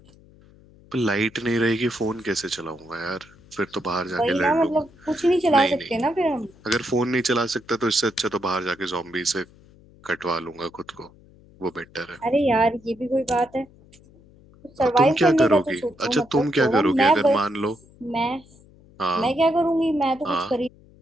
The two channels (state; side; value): noise; left; hum, 26 dB below the sound